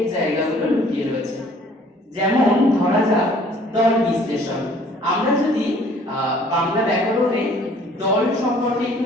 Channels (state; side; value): normal; both; correlation 0.56